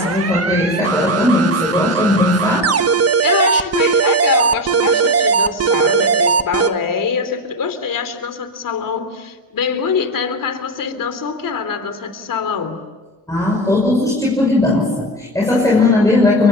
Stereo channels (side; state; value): both; normal; correlation 0.16